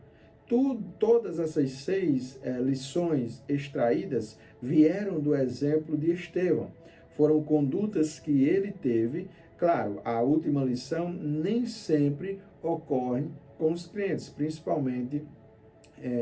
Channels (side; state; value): both; identical; correlation 1.00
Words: Todas essas 6 lições extraídas vieram do exemplo de Estevão. Foram condutas que ele teve. Claro, a última lição nem sempre ocorre com os crentes, principalmente